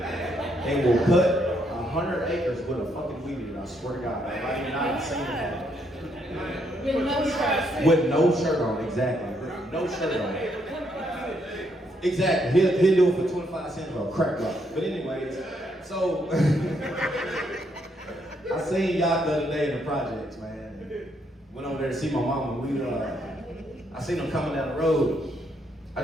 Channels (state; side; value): normal; both; correlation 0.74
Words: will cut 100 acres with a fucking weed eater. I swear to God, I've not seen it. With no shirt on, exactly. With no shirt on. Exactly. He'll do it for 25 cents for a crack rock. But anyways, so I seen y'all the other day in the projects, man. Went over there to see my mama. I seen him coming down the road. I